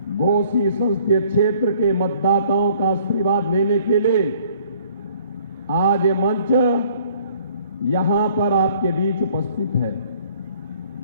घोसी संसदीय क्षेत्र के मतदाताओं का आशीर्वाद लेने के लिए आज ये मंच यहां पर आपके बीच उपस्थित है।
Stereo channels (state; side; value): inverted; both; correlation -0.59